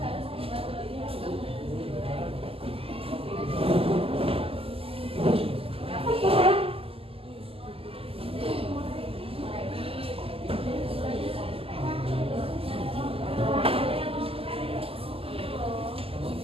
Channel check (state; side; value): late; left; 0.28 ms